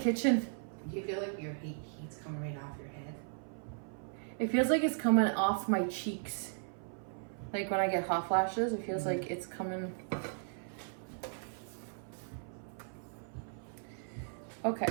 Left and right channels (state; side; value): silent; left; 53 dB below the other